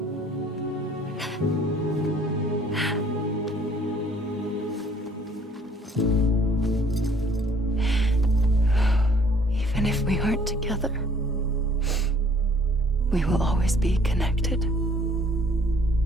Even if we aren't together, we will always be connected.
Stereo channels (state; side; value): normal; both; correlation 0.58